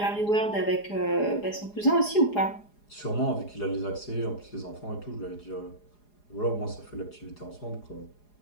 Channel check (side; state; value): right; late; 4.8 ms